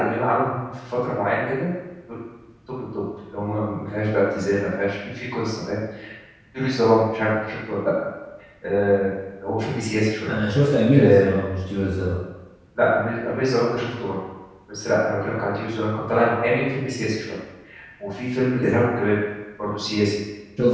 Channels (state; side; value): identical; both; correlation 1.00